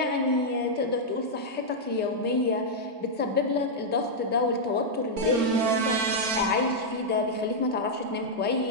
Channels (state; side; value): late; left; 3.2 ms